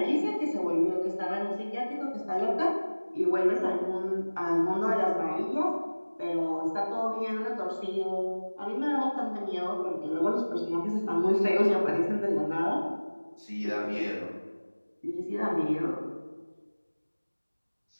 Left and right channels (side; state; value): both; inverted; correlation -1.00